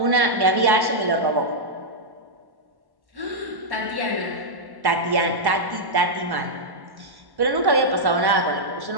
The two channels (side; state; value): left; late; 1.1 ms